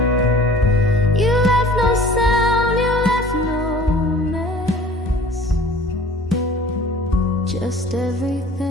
You left no sound, you left no mess, just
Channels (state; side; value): normal; both; correlation 0.48